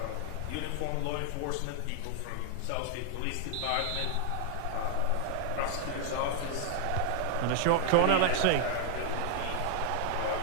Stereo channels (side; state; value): both; different; correlation 0.00